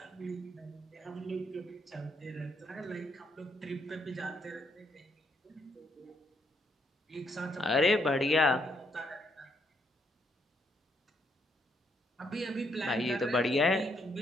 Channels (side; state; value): both; normal; correlation 0.74